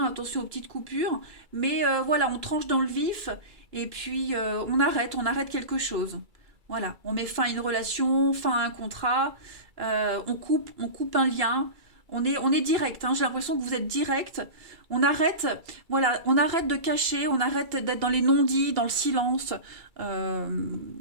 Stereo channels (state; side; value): late; left; 2.3 ms